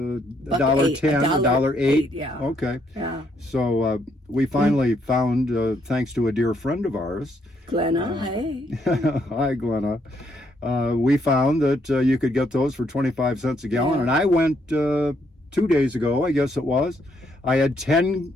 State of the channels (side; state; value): both; normal; correlation 0.73